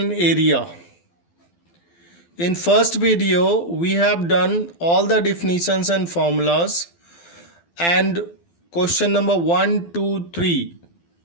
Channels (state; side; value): late; right; 12 ms